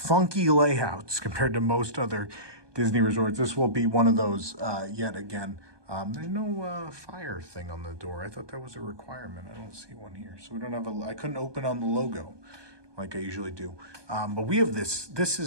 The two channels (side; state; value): left; late; 1.2 ms